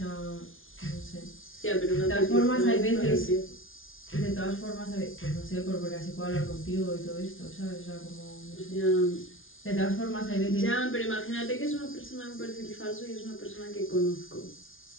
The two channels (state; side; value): late; right; 0.58 ms